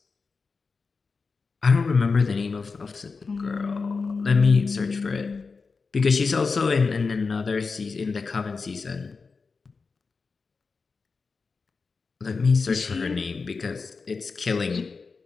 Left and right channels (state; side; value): quieter; right; 4.6 dB